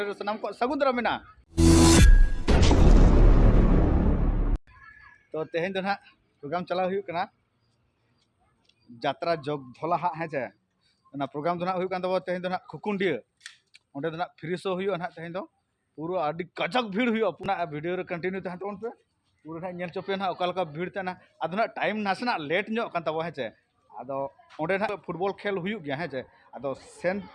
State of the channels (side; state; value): both; identical; correlation 1.00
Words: सनम को सगुंदरा मेना तो तेहन दो ना प्रोग्राम चला हुई करना जात्रा जोग धोला हाँ है चे ना प्रोग्राम दो ना हुई कान तब तेहन दो ना खुकुंडिया ओंडे दो ना फ्री शो हुई ना तेहन दो पूरा आदि कजक भीड़ हुई अपना वीडियो रे कंटिन्यू तहन तोन पे पूरा ना नेल चोपे ना ओका भीड़ तना आदो ना टाइम नासना लेट ᱧᱚᱜ कान तब है चे आदो ओंडे ना फुटबॉल खेल हुई गया है चे आदो सेन